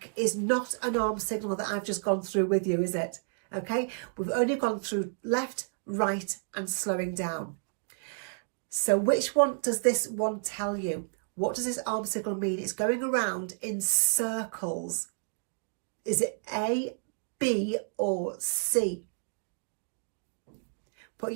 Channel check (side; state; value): left; silent; digital silence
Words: is not an arm signal that I've just gone through with you, is it? Okay, we've only gone through left, right, and slowing down. So which one does this one tell you? What does this arm signal mean? It's going around in circles. Is it A, B or C? Put